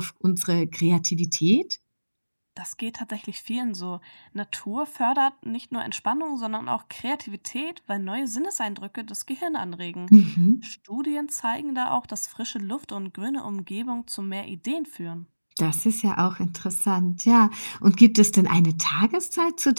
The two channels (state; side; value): inverted; both; correlation -1.00